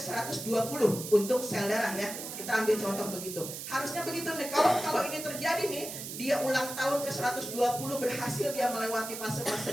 untuk sel darah ya. Kita ambil contoh begitu. Harusnya begitu nih. Kalau ini terjadi nih, dia ulang tahun ke-120 berhasil dia melewati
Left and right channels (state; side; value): noise; right; hiss, 8 dB below the sound